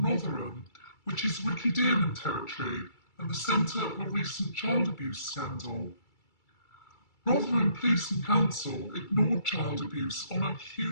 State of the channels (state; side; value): late; right; 2.3 ms